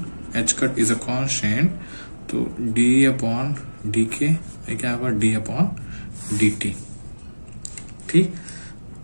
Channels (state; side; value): inverted; both; correlation -1.00